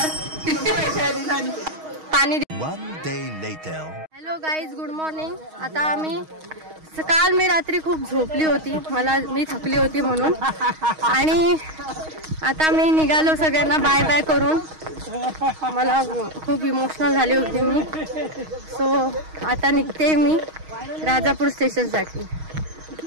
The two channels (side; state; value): left; late; 6.4 ms